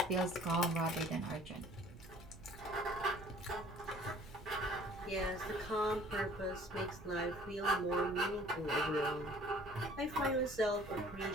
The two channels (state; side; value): noise; right; rumble, 17 dB below the sound